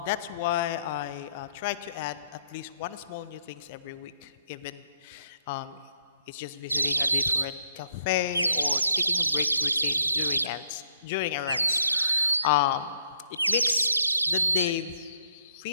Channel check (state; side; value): inverted; both; correlation -0.71